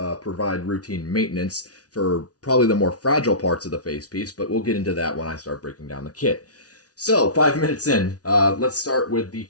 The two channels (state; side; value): late; right; 0.68 ms